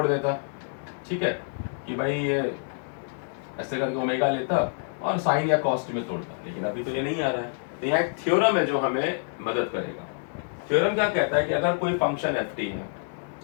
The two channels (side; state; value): right; silent; 60 dB below the other